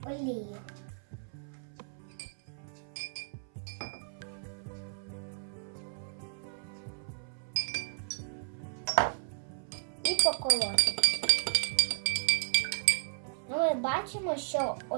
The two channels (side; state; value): left; silent; 55 dB below the other